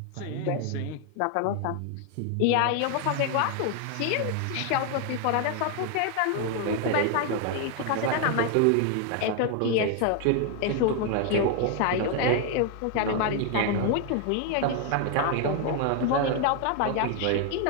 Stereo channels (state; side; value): different; both; correlation 0.00